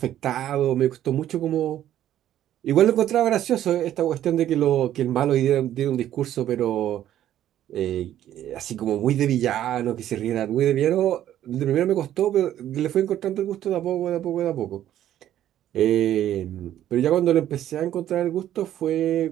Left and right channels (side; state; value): left; quieter; 11.9 dB